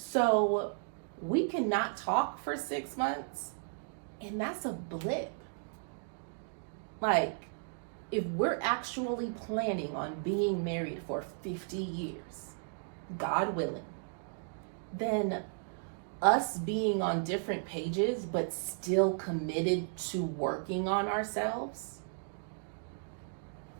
we cannot talk for 6 months, and that's a blip. Like, if we're actually planning on being married for 50 years, God willing, then us being on different pages but still committed to working on ourselves,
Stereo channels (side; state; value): left; silent; digital silence